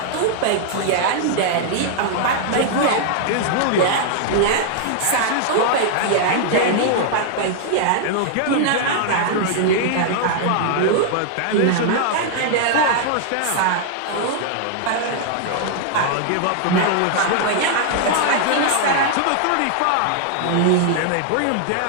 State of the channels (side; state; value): both; different; correlation -0.01